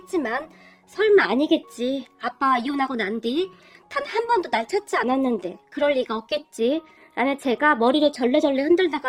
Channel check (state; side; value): identical; both; correlation 1.00